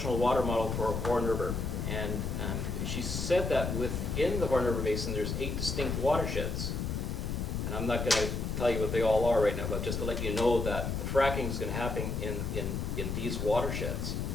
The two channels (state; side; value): noise; left; rumble, 2 dB below the sound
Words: Water Model for Horn River, and she said that within the Horn River Basin there's 8 distinct watersheds. And I'm not going to tell you what they all are right now, but just to let you know that the fracking is going to happen in these watersheds.